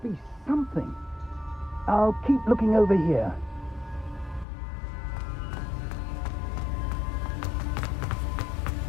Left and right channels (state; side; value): drops out; right; at 4.5 s